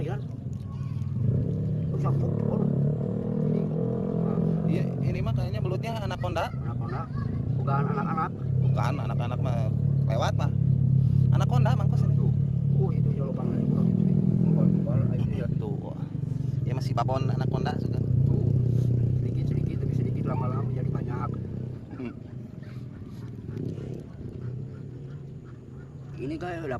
Sangkut ini. Iya, ini mah kayaknya belutnya anaconda. Anak-anak, bukan anak-anak. Bukan anak-anak mah lewat mah. Anaconda mangkos ini. Itu jauh banget. Mumpal aja ya. Tuh. Ya masih babon anaconda sudah. Sedikit tapi sedikit lama-lama jadi banyak. Ini kayak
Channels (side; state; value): both; identical; correlation 1.00